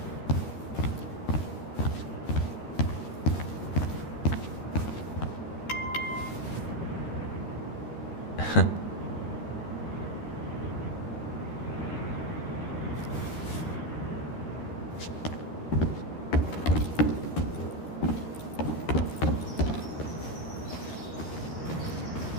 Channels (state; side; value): late; right; 13 ms